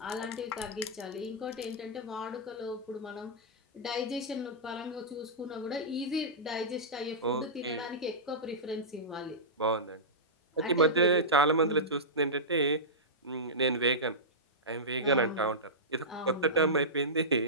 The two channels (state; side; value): normal; both; correlation -0.15